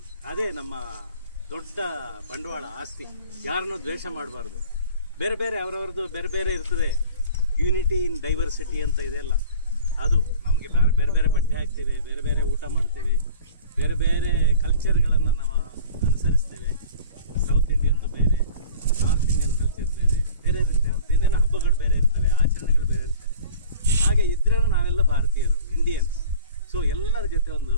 ಅದೇ ನಮ್ಮ ದೊಡ್ಡ ಬಂಡವಾಳ, ಆಸ್ತಿ. ಯಾರನ್ನೂ ದ್ವೇಷ ಮಾಡಬಾರ್ದು. ಬೇರೆ ಬೇರೆ ಅವರವ್ರದ್ದು ಬೇರೆ ಬೇರೆ ಇರ್ತದೆ. ಯೂನಿಟಿ ಇನ್ ಡೈವರ್ಸಿಟಿ ಅಂತ ಇದೆಲ್ಲ, ಅದು ನಮಗೆ ಬೇರೆ ಬೇರೆ ಬಟ್ಟೆ ಹಾಕ್ತೇವೆ, ಬೇರೆ ಬೇರೆ ಊಟ ಮಾಡ್ತೇವೆ, ಬೇರೆ ಬೇರೆ ಕಲ್ಚರ್ಗಳನ್ನು ನಾವು ಅನುಸರಿಸ್ತೇವೆ. ಸೌತ್ ಇಂಡಿಯನ್ದು ಬೇರೆ, ನಾರ್ತ್ ಇಂಡಿಯನ್ ಕಲ್ಚರ್ ಬೇರೆ ಬೇರೆ ಇರುತ್ತೆ. ಏನೇನೋ ಹಬ್ಬಗಳು ಬೇರೆ ಇರ್ತವೆ, ಆಚರಣೆಗಳು ಬೇರೆ ಇರ್ತವೆ. ಹಾಗೆ ಇದ್ರೂ ನಾವೆಲ್ಲ ಭಾರತೀಯರು, ಇಂಡಿಯನ್ಸ್. ಸೊ ಎಲ್ಲರ ಜೊತೆ ಒಂದು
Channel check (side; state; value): both; inverted; correlation -0.43